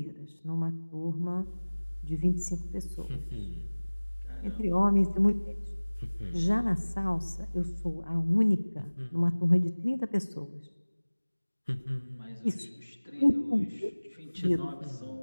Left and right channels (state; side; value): inverted; both; correlation -1.00